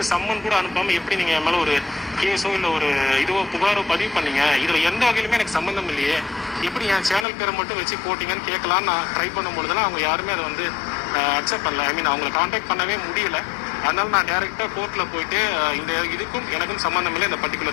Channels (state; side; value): drops out; right; at 7.2 s